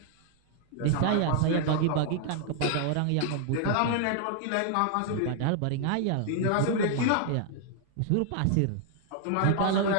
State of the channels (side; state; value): both; different; correlation 0.00